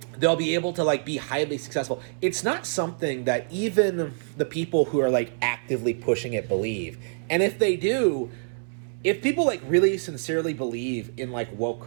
be able to like be highly successful. It's not something that even the people who are like actively pushing it believe. And if they do, if people like really sincerely believe in like woke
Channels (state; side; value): silent; left; 61 dB below the other